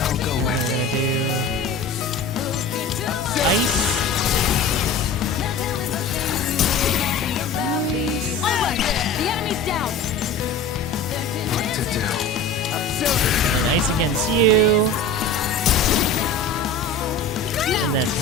And then we're gonna do ice. Nice. Alright, the enemy's down. And then ice against you. And then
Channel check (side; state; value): right; quieter; 3.6 dB